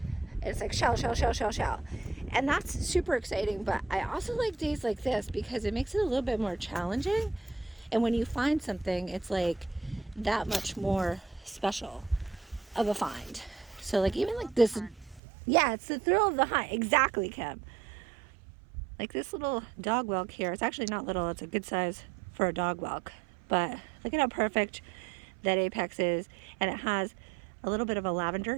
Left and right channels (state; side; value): drops out; left; at 15.2 s